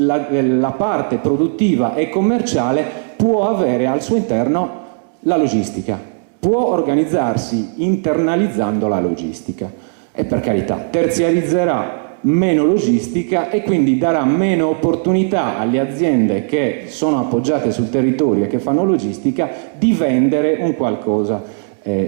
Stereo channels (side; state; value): left; silent; 67 dB below the other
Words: parte produttiva e commerciale può avere al suo interno la logistica, può organizzarsi internalizzando la logistica e per carità terziarizzerà meno logistica e quindi darà meno opportunità alle aziende che sono appoggiate sul territorio e che fanno logistica di vendere un qualcosa